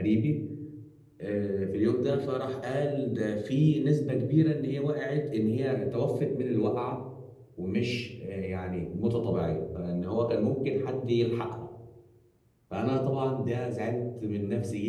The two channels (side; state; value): both; identical; correlation 1.00